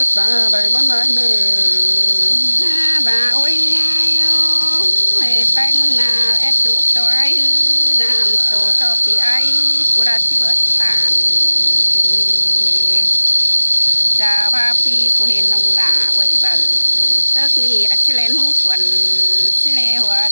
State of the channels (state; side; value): inverted; both; correlation -1.00